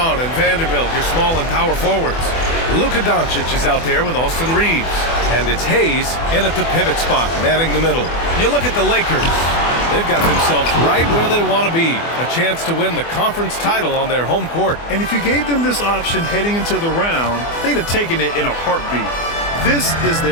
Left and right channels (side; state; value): right; late; 24 ms